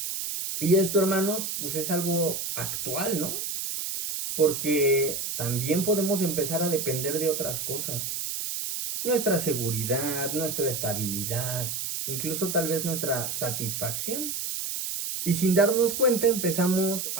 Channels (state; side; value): noise; right; hiss, 3 dB below the sound